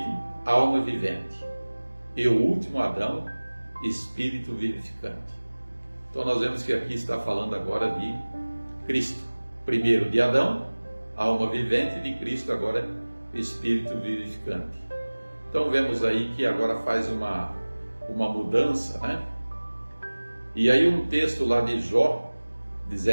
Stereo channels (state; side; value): inverted; both; correlation -1.00